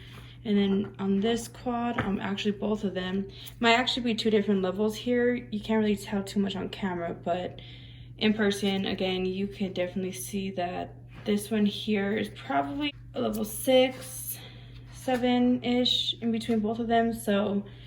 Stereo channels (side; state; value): both; identical; correlation 1.00